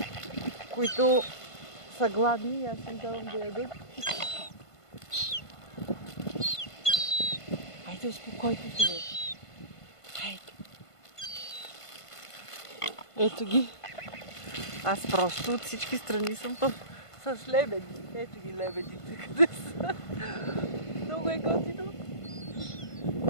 които са гладни и аз им давам да ядат. Хайде, успокойте се, бе. Хайде. Ето ги. Аз просто от всички страни съм с лебеди. Ето ги лебедите, къде са. Много е готино.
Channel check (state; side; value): late; right; 1.5 ms